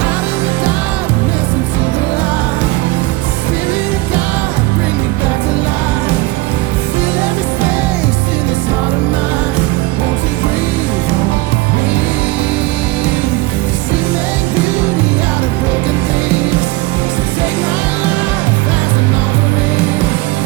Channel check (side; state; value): left; quieter; 19.9 dB